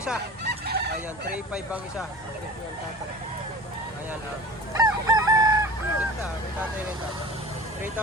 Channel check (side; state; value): both; normal; correlation 0.39